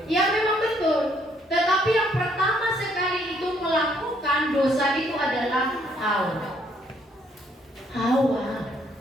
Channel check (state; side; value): normal; both; correlation 0.68